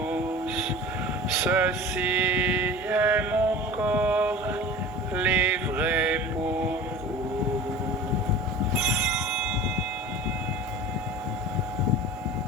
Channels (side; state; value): both; normal; correlation 0.37